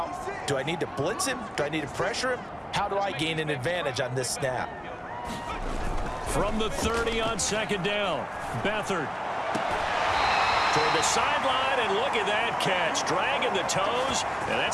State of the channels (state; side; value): identical; both; correlation 1.00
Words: do I need to blitz him? Do I need to pressure him? How do I gain an advantage on this snap? From the 30 on 2nd down, Beathard. Toward the sideline, and look at that catch. Dragging the toes, and